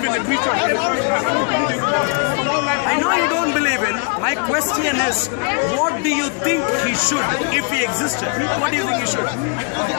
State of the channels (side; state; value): right; quieter; 35.8 dB